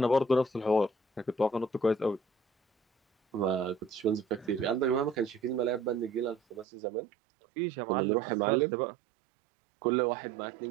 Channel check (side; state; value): left; drops out; at 6.7 s